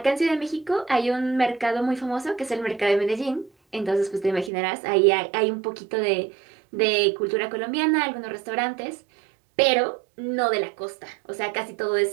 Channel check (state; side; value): drops out; left; at 4.5 s